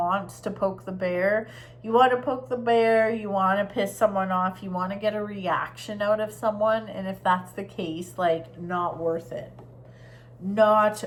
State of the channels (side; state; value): both; identical; correlation 1.00